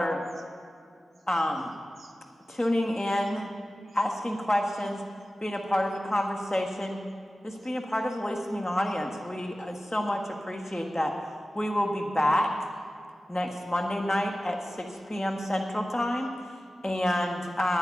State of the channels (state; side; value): normal; both; correlation 0.95